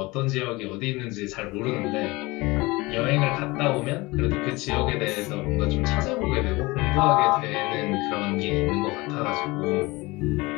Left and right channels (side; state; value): right; quieter; 22.6 dB